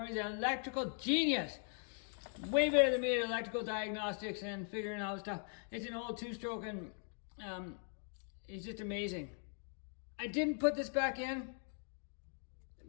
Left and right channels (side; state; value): right; silent; 51 dB below the other